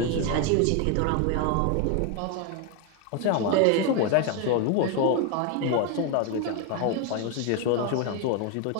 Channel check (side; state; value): both; different; correlation 0.01